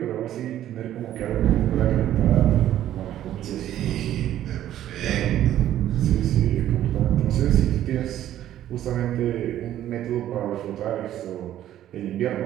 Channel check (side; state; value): left; quieter; 12.2 dB